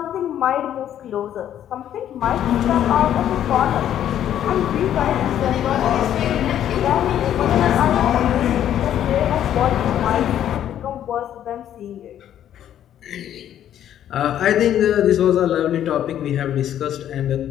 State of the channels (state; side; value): quieter; right; 10.8 dB